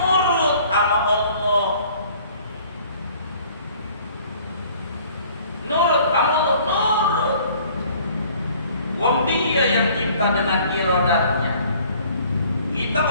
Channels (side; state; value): both; inverted; correlation -0.55